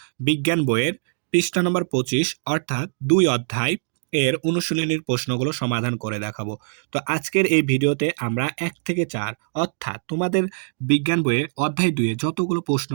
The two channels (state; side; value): silent; left; digital silence